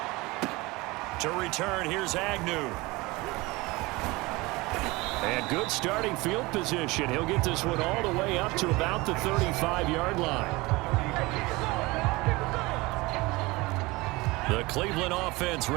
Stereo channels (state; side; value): quieter; left; 22.7 dB